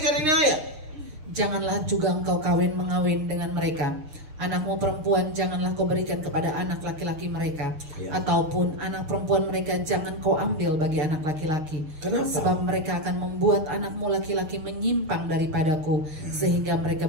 ini ayat. Janganlah juga engkau mengawin dengan mereka. Anakmu perempuan janganlah kau berikan kepada anak laki-laki mereka, ataupun anak perempuan mereka jangan kau ambil bagi anak laki-laki. Kenapa? Sebab mereka akan membuat anakmu laki-laki menyimpang daripadaku, sehingga mereka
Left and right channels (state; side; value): late; left; 6.6 ms